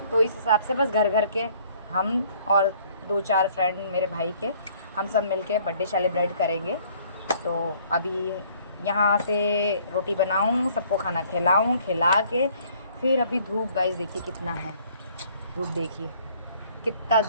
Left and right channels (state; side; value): inverted; both; correlation -0.59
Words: तो इस हिसाब से बस घर घर के हम और 2-4 फ्रेंड मेरे भाई के, हम सब मिलके बर्थडे सेलिब्रेट करेंगे। तो अभी यहाँ से रोटी बनाऊँ, सबको खाना खिलाऊँ, खिला के फिर अभी धूप गाइस देखिए कितना है, धूप देखिए कितना